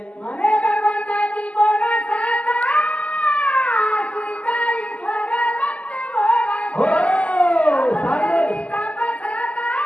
म्हणे भगवंताची कोण साता सुताई स्वरगत भोगा हो साधी तापसाता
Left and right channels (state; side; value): late; right; 0.067 ms